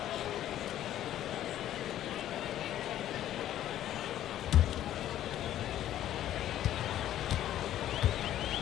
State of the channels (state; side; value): quieter; right; 12.2 dB